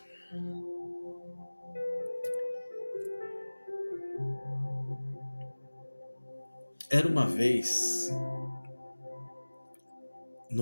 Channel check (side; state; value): both; inverted; correlation -1.00